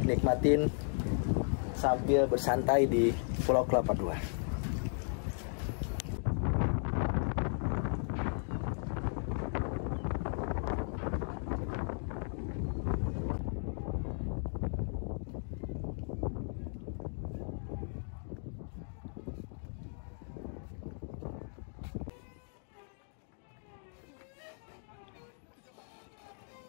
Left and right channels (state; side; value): silent; right; 54 dB below the other